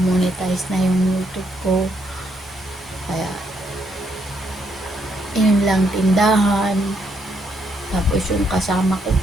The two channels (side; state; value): both; normal; correlation 0.75